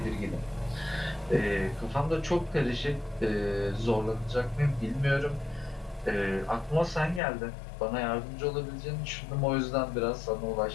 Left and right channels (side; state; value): right; drops out; at 7.2 s